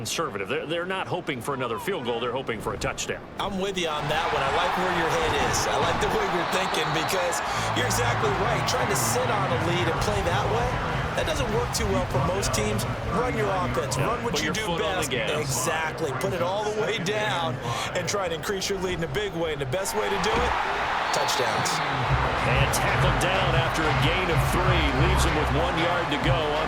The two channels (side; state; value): both; identical; correlation 1.00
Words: They're not hoping for another field goal. They're hoping for a touchdown. I'm with you on that one. I like where your head is. I like the way you're thinking because you're exactly right. Trying to sit on a lead and play that way, that doesn't work too well for most teams. Run your offense. Run what you do best. Exactly. Put it all the way down and try to increase your lead in a big way. And the best way to do it, touchdowns. And tackled down after a gain of 3. Leaves them with 1 yard to go on